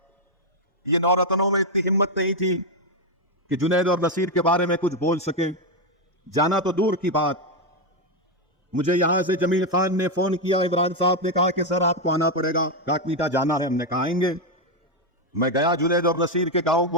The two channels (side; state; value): both; normal; correlation 0.04